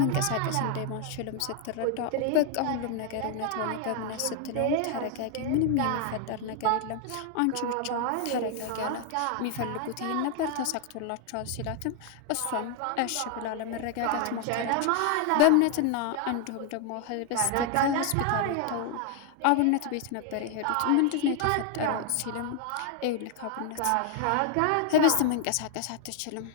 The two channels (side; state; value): both; different; correlation 0.00